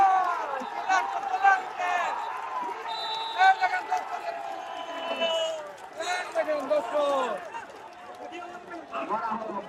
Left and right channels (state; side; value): identical; both; correlation 1.00